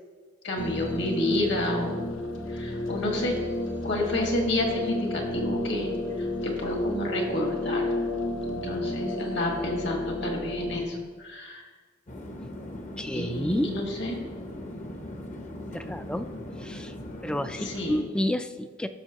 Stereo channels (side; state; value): both; normal; correlation 0.58